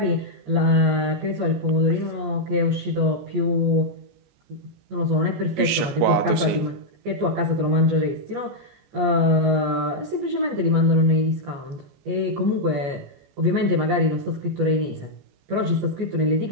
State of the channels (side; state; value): left; late; 14 ms